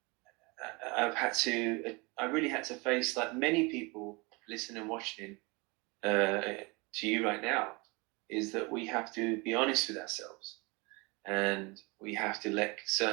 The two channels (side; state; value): left; quieter; 27.1 dB